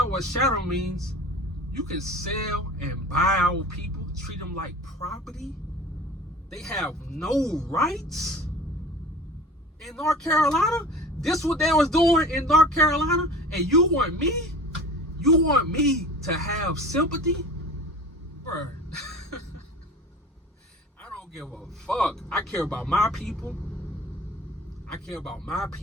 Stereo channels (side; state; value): both; normal; correlation 0.39